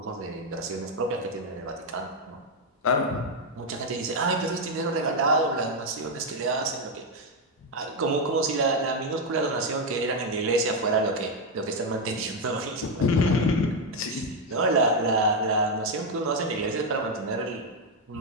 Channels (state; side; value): normal; both; correlation 0.04